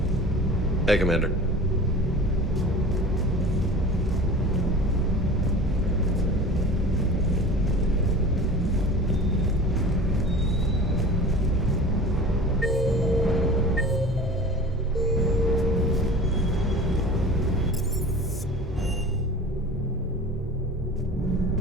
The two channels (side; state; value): both; normal; correlation 0.38